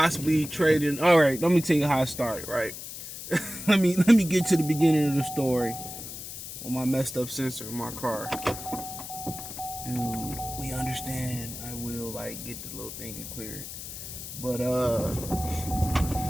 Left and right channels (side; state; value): left; noise; hiss, 10 dB below the sound